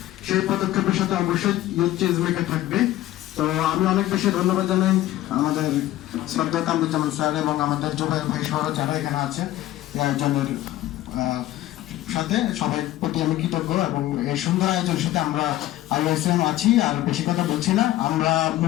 সেই পদক্ষেপের সাথে অবশ্যই ইউথ চেঞ্জ মেকার থাকবে। তো আমি অনেক বেশি ধন্যবাদ জানাই আমাদের শ্রদ্ধা কামরুজ্জামান স্যার এবং আমাদের জুবাইর ভাই সহ যারা এখানে আছে এই আয়োজনের সাথে সবাই প্রতি আমি কৃতজ্ঞ। এবং এই সুন্দর আয়োজনের সাথে আমরা আইওএসএম আছি। আর বেশি কথা বলছি না, আমরা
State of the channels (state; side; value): quieter; right; 14.8 dB